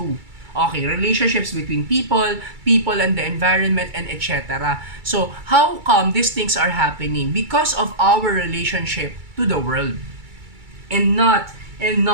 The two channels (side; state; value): left; late; 2.3 ms